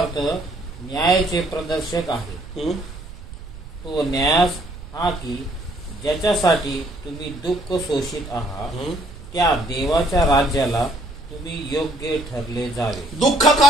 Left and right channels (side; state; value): right; noise; rumble, 13 dB below the sound